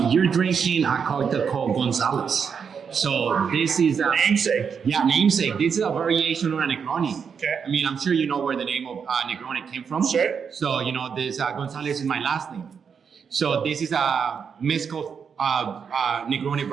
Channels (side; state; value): left; quieter; 6.6 dB